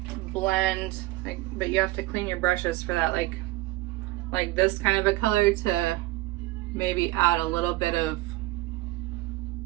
blend, but you have to clean your brushes for that, like this kind of a color to maybe add a little bit of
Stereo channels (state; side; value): quieter; left; 19.2 dB